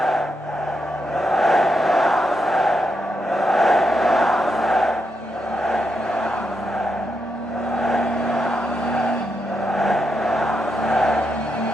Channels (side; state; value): both; normal; correlation 0.83